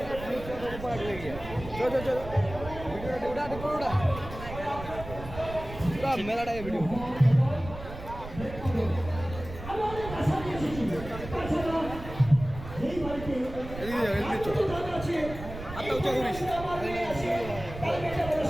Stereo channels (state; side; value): noise; right; rumble, 11 dB below the sound